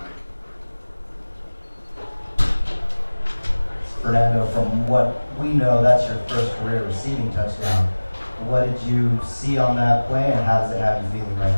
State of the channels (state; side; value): inverted; both; correlation -1.00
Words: Fernando, from what we know, that's your first career receiving touchdown. What did you see on that play, and how does it have you feeling right